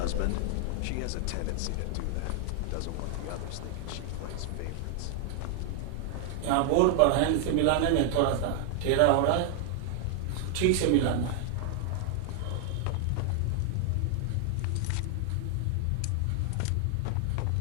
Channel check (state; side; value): different; both; correlation 0.00